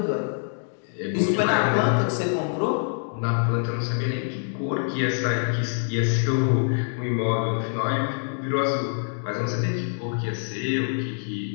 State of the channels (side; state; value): right; silent; digital silence